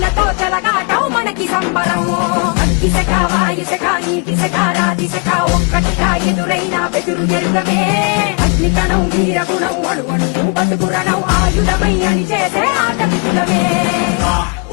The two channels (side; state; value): right; quieter; 36.5 dB